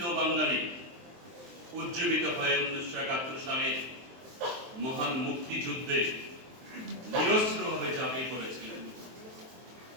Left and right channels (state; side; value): late; left; 23 ms